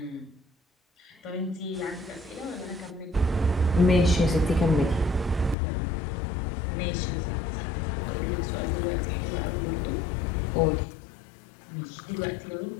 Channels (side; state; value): right; drops out; at 5.6 s